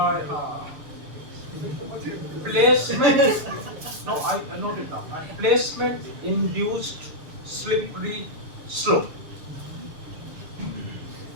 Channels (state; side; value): late; left; 7.1 ms